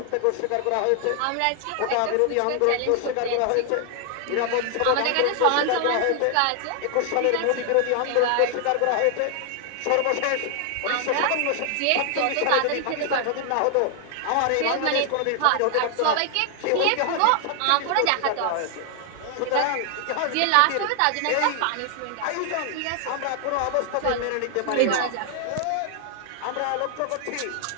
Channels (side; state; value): both; different; correlation 0.00